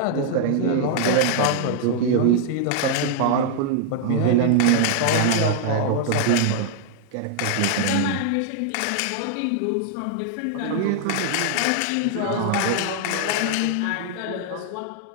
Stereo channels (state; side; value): different; both; correlation 0.00